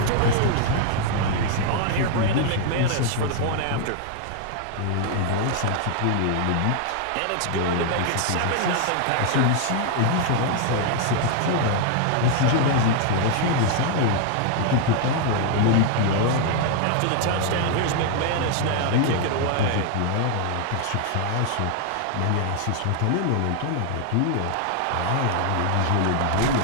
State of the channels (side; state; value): both; different; correlation 0.00